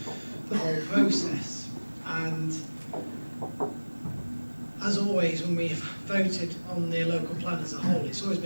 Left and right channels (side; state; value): both; inverted; correlation -1.00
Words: whole process. And as always, when we've voted on the local plan as a whole, it's always